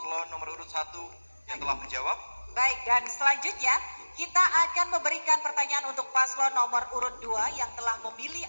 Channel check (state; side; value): inverted; both; correlation -1.00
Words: nomor urut 1 yang telah menjawab. Baik, dan selanjutnya kita akan memberikan pertanyaan untuk paslon nomor urut 2 yang telah memilih